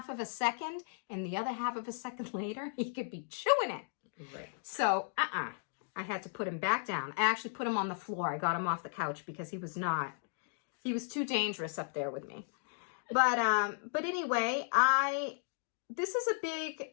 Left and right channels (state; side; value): silent; right; digital silence